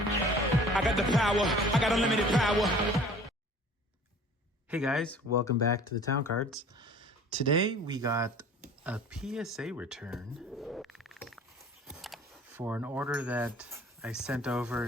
I got the power. I got unlimited power. Hey guys, welcome back to the Town Cards. Today we got a PSA return for an order that I sent over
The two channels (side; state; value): both; normal; correlation 0.47